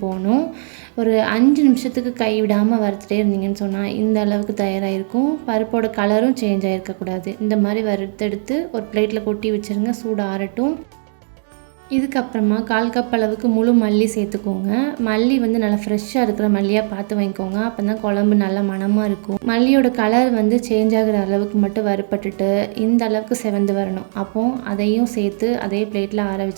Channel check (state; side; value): silent; left; digital silence